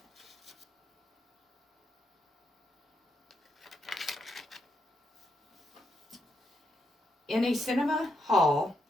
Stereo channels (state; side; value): normal; both; correlation 0.80